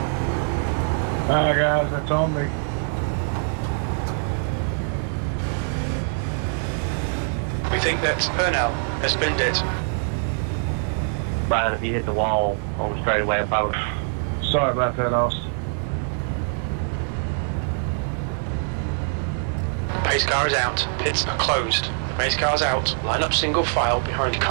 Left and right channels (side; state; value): left; silent; 57 dB below the other